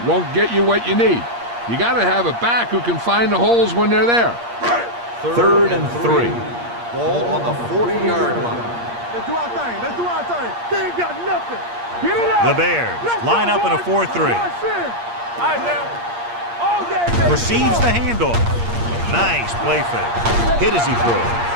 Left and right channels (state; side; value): late; left; 8.5 ms